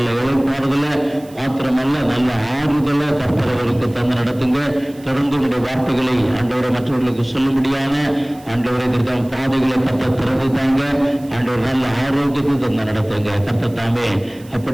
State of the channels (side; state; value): right; noise; hiss, 25 dB below the sound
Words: இழைப்பாறுதலை மாத்திரமல்ல நல்ல ஆறுதலை கர்த்தர் அவருக்கு தந்து நடத்துங்க. தொடர்ந்து உங்களுடைய வார்த்தைகளை ஆண்டவரை மற்றவர்களுக்கு சொல்லும்படியான ஆண்டவரை இதற்கான பாதைகளை கர்த்தர் திறந்து தாங்க. ஆண்டவர் நல்ல ஆரோக்கியத்தை தந்து நடத்துங்க. கர்த்தர் தாமே